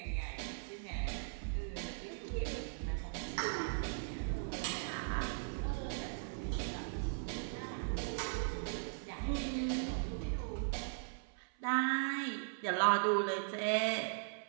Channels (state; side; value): silent; left; 52 dB below the other